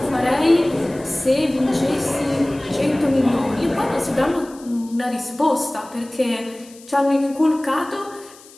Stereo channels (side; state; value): left; noise; hiss, 23 dB below the sound